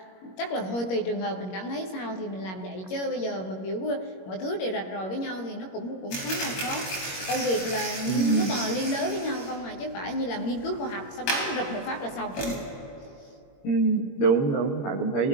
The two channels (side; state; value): right; late; 21 ms